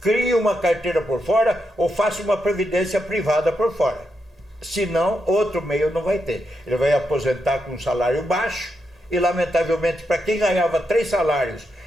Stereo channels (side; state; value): both; normal; correlation 0.84